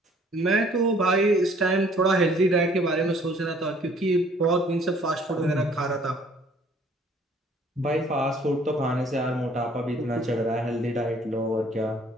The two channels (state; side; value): normal; both; correlation 0.58